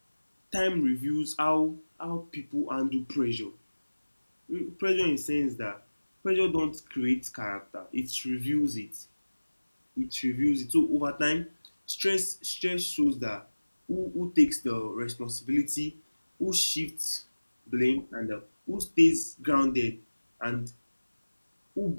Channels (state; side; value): inverted; both; correlation -1.00